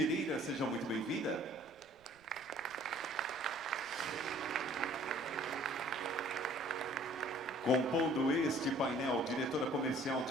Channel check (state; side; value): noise; right; rumble, 29 dB below the sound